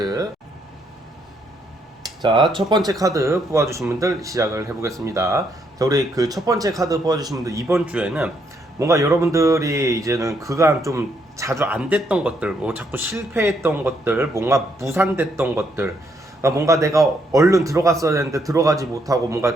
자, 첫 번째 카드 뽑아주신 분들 시작을 해보겠습니다. 자, 우리 그 첫 번째 카드 뽑아주신 분들 이번 주에는 뭔가 여러분들이 이제는 그간 좀 자주 안 됐던 것들, 뭐 자꾸 실패했던 것들, 뭔가 무산됐던 것들, 그러니까 뭔가 내가 얼른 들어갔어야 되는데 들어가지 못하고 뭔가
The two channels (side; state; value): both; normal; correlation 0.74